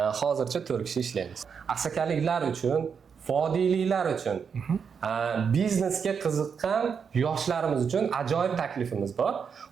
Hozircha 4 kishi ishlaymiz. Asakaliklar uchun, vodiyliklar uchun, biznesga qiziqqan yoshlarimiz uchun ajoyib taklifimiz bor.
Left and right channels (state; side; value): quieter; left; 6.5 dB